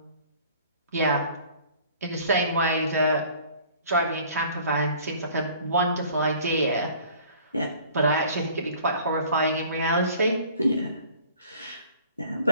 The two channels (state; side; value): inverted; both; correlation -0.51